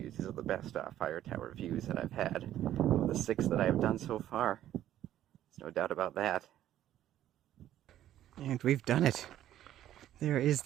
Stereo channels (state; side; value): quieter; left; 12.3 dB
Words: These are the best fire tower views that I've had. Of the 6 that I've done so far. There's no doubt about that. And we've done it. There is